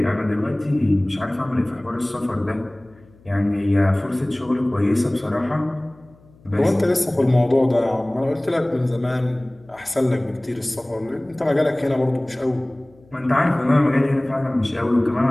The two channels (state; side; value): noise; left; hum, 28 dB below the sound